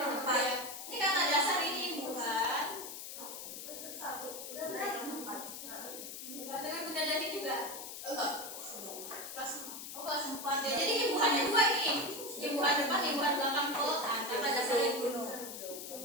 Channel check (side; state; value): left; noise; hiss, 9 dB below the sound